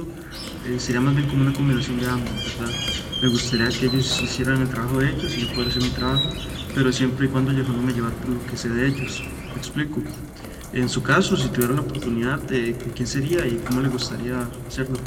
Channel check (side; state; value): both; identical; correlation 1.00